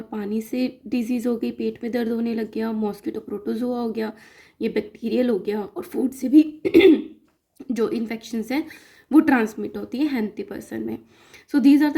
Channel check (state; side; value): identical; both; correlation 1.00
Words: पानी से डिजीज़ हो गई, पेट में दर्द होने लग गया, मॉस्किटो प्रोटोजोआ हो गया, ये बैक्टीरियल हो गया, और फूड से भी जो इन्फेक्शंस हैं वो ट्रांसमिट होती है हेल्थी पर्सन में। So these are the